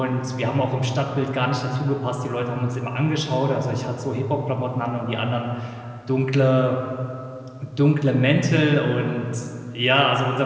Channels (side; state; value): both; identical; correlation 1.00